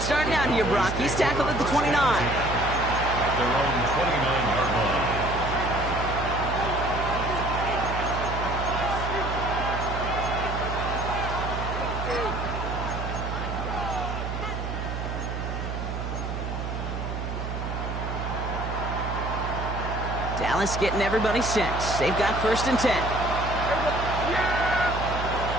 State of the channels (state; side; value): noise; right; hum, 4 dB below the sound